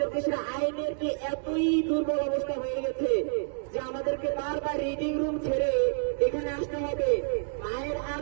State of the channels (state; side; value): silent; left; digital silence